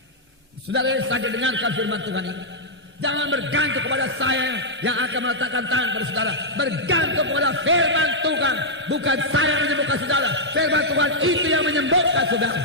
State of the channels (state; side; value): normal; both; correlation -0.07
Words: Saudara yang sakit, dengarkan firman Tuhan ini. Jangan bergantung kepada saya yang akan meletakkan tangan pada saudara. Bergantung kepada firman Tuhan. Bukan saya yang menyembuhkan saudara. Firman Tuhan itu yang menyembuhkan saudara.